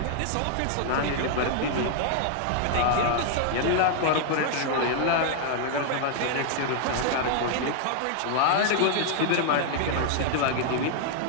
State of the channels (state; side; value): different; both; correlation 0.00